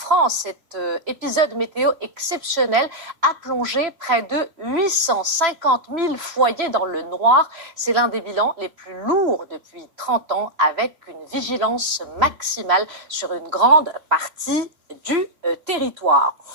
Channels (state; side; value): late; left; 3.0 ms